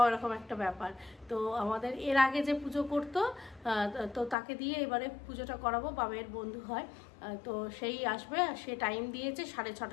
এরকম একটা ব্যাপার। তো আমাদের এর আগে যে পুজো করতো, তো তাকে দিয়ে এবারে পুজোটা করাবো। বাবের বন্ধু হয়, তো সেই আসবে। সে টাইম দিয়েছে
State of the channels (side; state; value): right; drops out; at 4.4 s